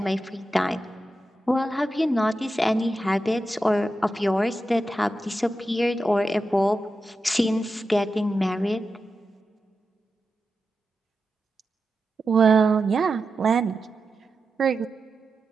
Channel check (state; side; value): normal; both; correlation 0.90